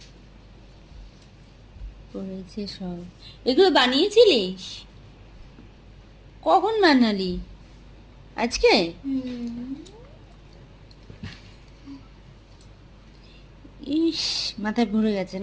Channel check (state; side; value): identical; both; correlation 1.00